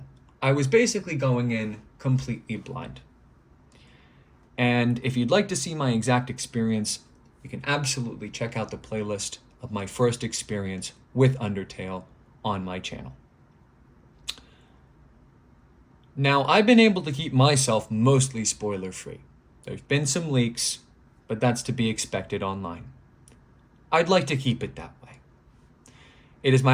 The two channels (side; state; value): both; identical; correlation 1.00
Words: I was basically going in completely blind. And if you'd like to see my exact experience, you can absolutely check out the playlist of my first experience with Undertale on my channel. Now, I've been able to keep myself mostly spoiler-free. There's been some leaks, but that's to be expected online. I'd like to keep it that way. It is